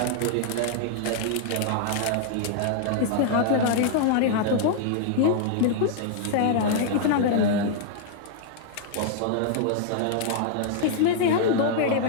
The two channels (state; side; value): different; both; correlation -0.01